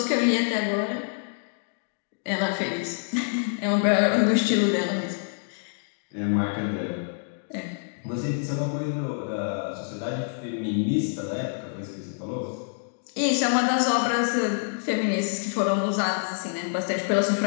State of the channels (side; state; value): right; silent; digital silence